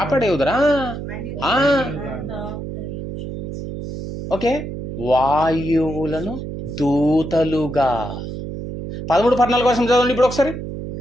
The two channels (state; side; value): noise; right; hum, 7 dB below the sound